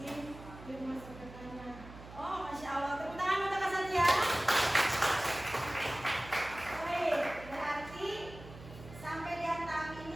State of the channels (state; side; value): noise; right; hum, 16 dB below the sound